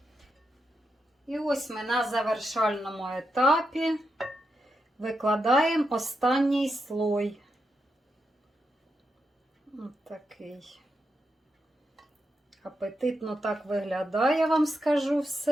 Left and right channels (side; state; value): both; normal; correlation 0.85